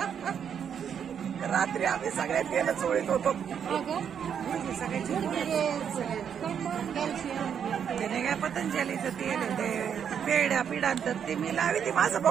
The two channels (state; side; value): quieter; left; 8.0 dB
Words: रात्री आम्ही सगळे तेल चोळीत होतो. त्याने काय पतंजलीचं तेल ते पेड्या पिढांतर ते मी लावी ते माझं